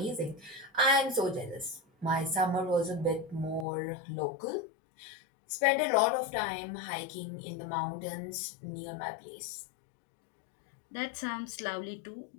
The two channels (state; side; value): drops out; right; at 3.7 s